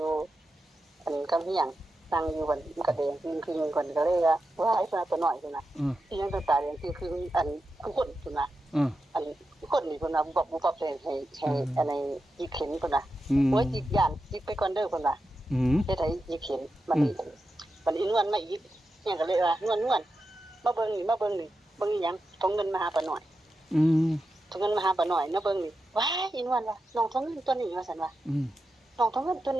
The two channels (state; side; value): normal; both; correlation 0.89